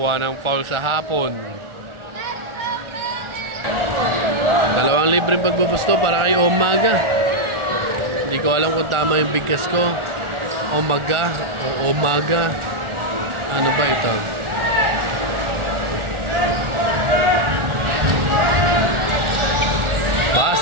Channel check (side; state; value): left; late; 1.4 ms